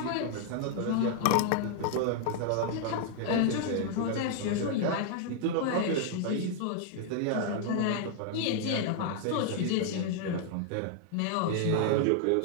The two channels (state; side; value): different; both; correlation 0.00